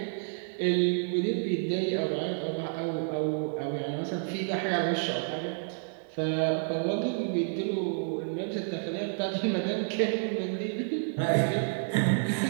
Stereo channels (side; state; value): left; silent; digital silence